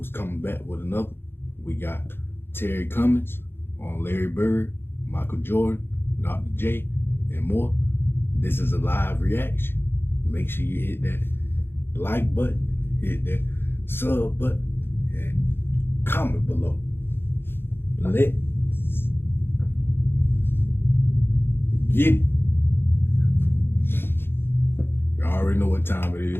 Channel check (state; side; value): late; right; 0.11 ms